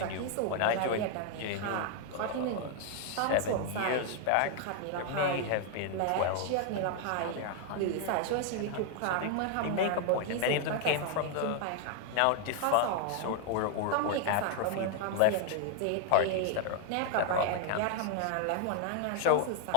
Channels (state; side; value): different; both; correlation 0.00